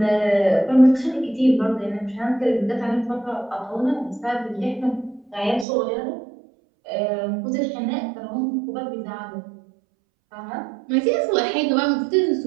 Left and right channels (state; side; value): drops out; left; at 5.7 s